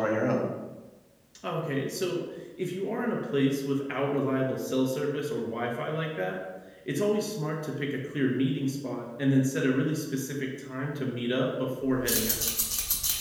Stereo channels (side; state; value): both; identical; correlation 1.00